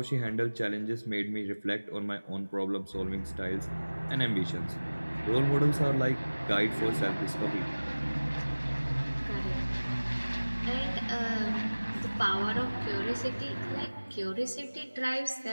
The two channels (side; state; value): both; inverted; correlation -1.00